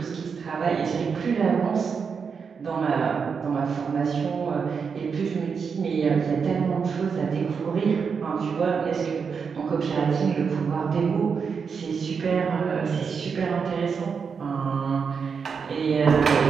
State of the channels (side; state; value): left; quieter; 5.9 dB